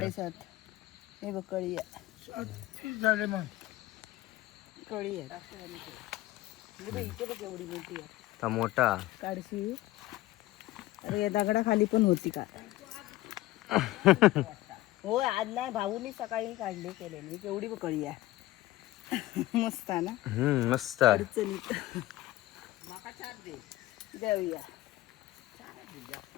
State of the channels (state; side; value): quieter; right; 16.9 dB